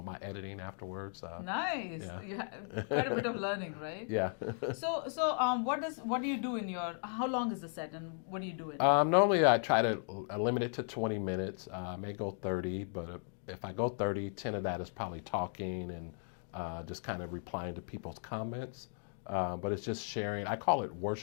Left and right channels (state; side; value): silent; right; 54 dB below the other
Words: my editing afterwards. Nice. yeah. You have quite a bit of learning, right? Yeah. So what do you do in your? How long is the set, and what do you do in? Normally I try to limit it to 20 minutes. I may go 30, but if I go 30, 10 of that is probably talking and just kind of replying to people's comments. But it's just sharing. I call it